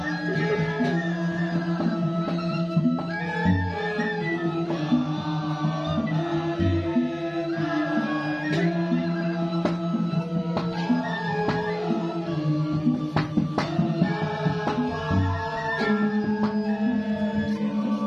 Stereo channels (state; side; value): noise; right; hum, 29 dB below the sound